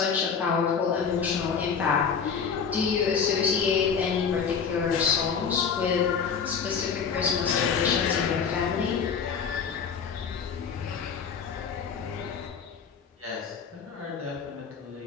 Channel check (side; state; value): right; quieter; 6.3 dB